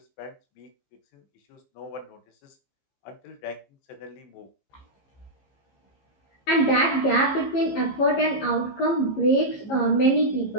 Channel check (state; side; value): late; right; 15 ms